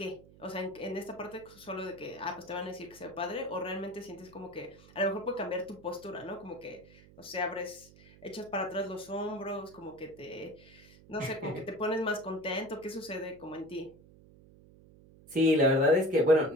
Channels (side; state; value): right; noise; hum, 23 dB below the sound